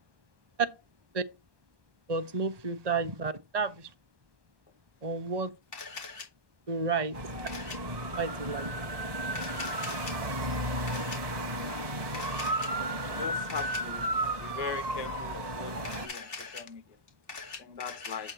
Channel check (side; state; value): left; late; 1.2 ms